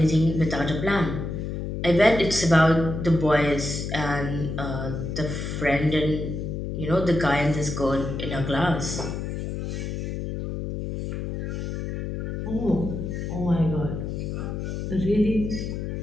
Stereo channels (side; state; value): left; noise; hum, 4 dB below the sound